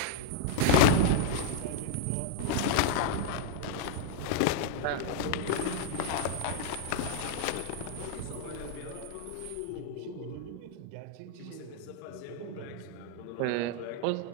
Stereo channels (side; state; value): both; different; correlation 0.00